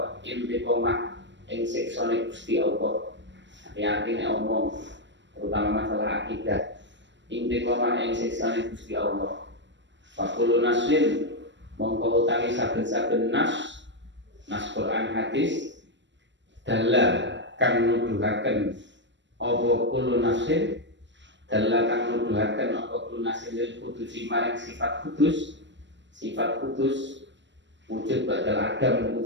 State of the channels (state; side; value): late; left; 0.53 ms